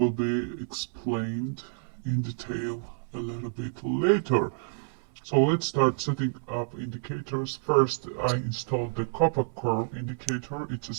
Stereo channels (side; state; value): left; silent; 59 dB below the other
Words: be explained in detail a little bit later. So let's start setting up indicators. First, I installed the copper curve indicator. It